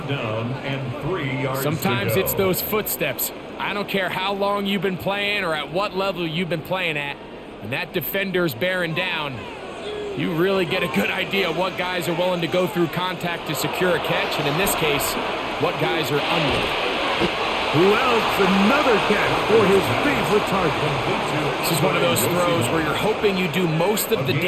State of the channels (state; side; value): identical; both; correlation 1.00